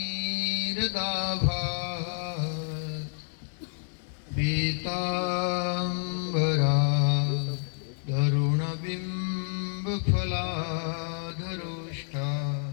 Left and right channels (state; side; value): silent; right; 58 dB below the other